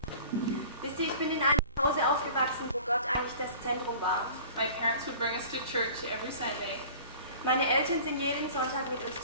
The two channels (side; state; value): both; inverted; correlation -0.44